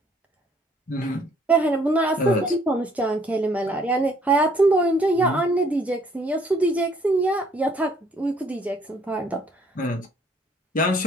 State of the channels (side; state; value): both; normal; correlation 0.62